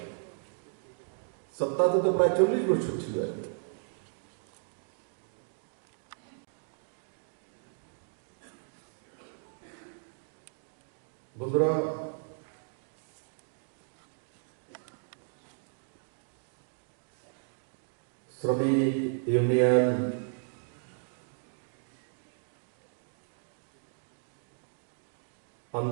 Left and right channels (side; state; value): left; silent; digital silence